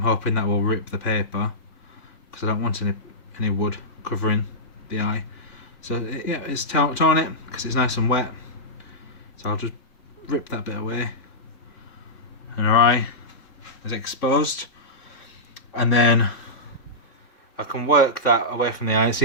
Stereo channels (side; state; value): right; late; 3.6 ms